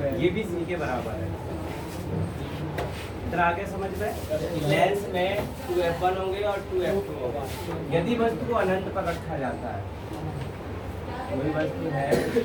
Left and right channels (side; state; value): both; identical; correlation 1.00